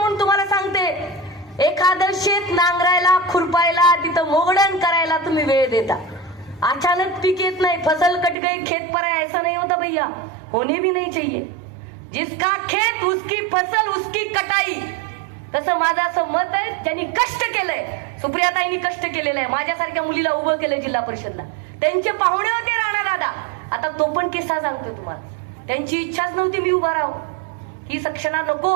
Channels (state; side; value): drops out; left; at 8.3 s